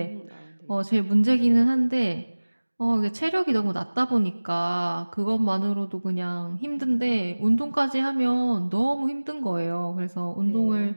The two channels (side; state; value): both; inverted; correlation -1.00